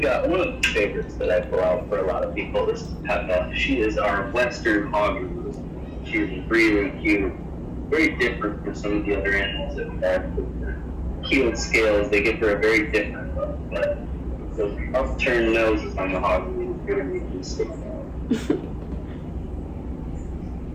one of the favorites that I pull out for a lot of people. This is Peppa. She is our Western hog. She's really cute. very different from some of the other animals that we have. With the keeled scales, they give her a very different look, but those upturned noses on the hog really make you stick out.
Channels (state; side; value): identical; both; correlation 1.00